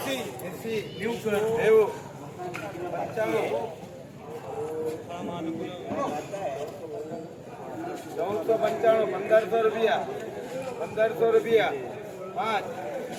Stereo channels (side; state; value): both; identical; correlation 1.00